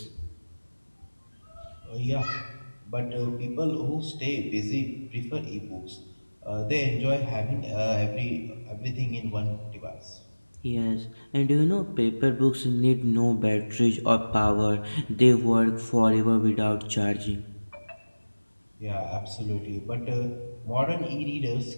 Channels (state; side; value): inverted; both; correlation -1.00